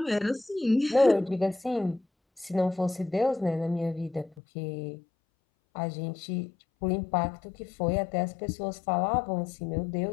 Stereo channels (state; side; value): drops out; right; at 4.4 s